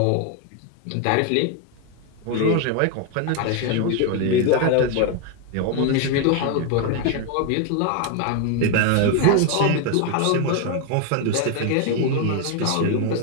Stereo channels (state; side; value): different; both; correlation 0.01